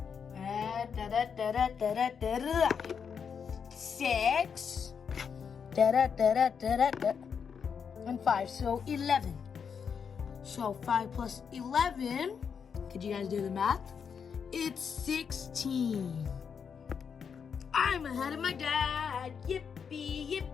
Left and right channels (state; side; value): quieter; right; 6.7 dB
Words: 6 and 5, so 11. So 5 plus 11, could you guys do the math? It's 16. I'm ahead of my dad. Yippee,